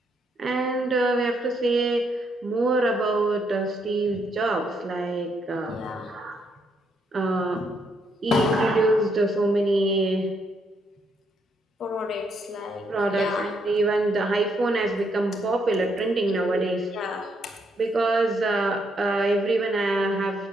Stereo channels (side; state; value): both; normal; correlation 0.75